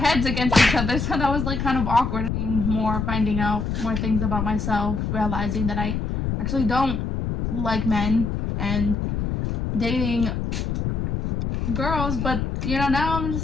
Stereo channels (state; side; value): noise; left; rumble, 2 dB below the sound